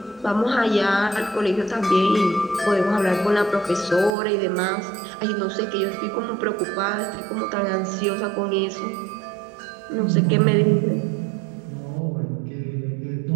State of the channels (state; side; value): drops out; left; at 4.1 s